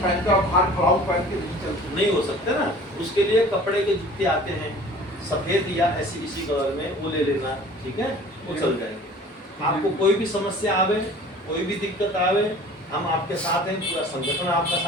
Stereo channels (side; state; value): both; normal; correlation 0.46